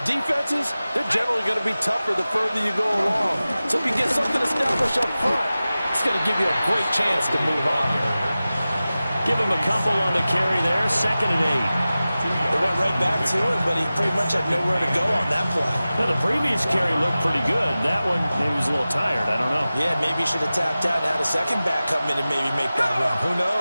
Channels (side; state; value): both; inverted; correlation -0.96